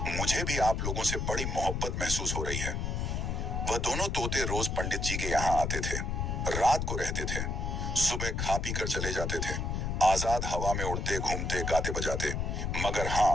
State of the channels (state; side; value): noise; left; rumble, 1 dB below the sound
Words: मुझे भी आप लोगों से बड़ी मोहब्बत महसूस हो रही है। वह दोनों तोते रोज पंडित जी के यहाँ आते थे, रात को रहते थे, सुबह खा पी कर चले जाते थे, आजाद हवा में उड़ते, घूमते, गाते बजाते। मगर